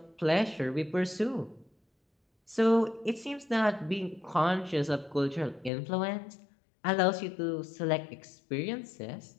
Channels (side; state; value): right; drops out; at 5.7 s